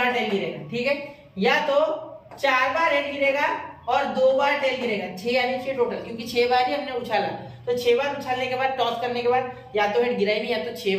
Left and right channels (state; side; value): identical; both; correlation 1.00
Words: टेल गिरेगा। ठीक है, या तो 4 बार हेड गिरेगा और 2 बार टेल गिरेगा। 6 यानी 6 टोटल, क्योंकि 6 बार ही हमने उछाला, तो 6 बार उछालने के बाद टॉस करने के बाद या तो हेड गिरा ही नहीं, या तो 6